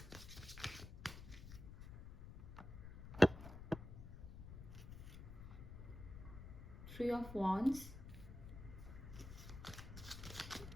Three of Wands.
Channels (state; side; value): noise; left; rumble, 11 dB below the sound